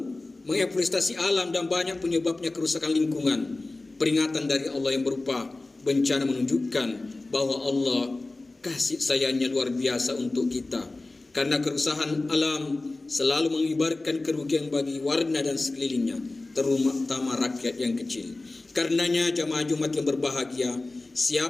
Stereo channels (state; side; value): quieter; right; 3.1 dB